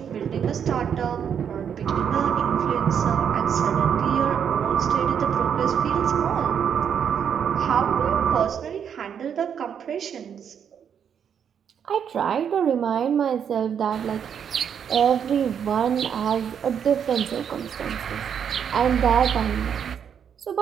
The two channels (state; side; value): quieter; left; 8.0 dB